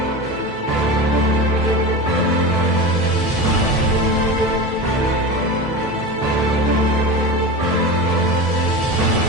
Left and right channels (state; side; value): normal; both; correlation 0.27